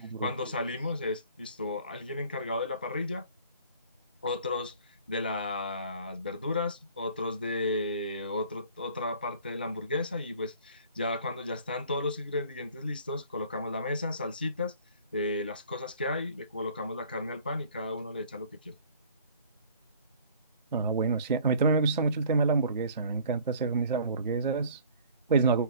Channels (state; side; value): inverted; both; correlation -0.51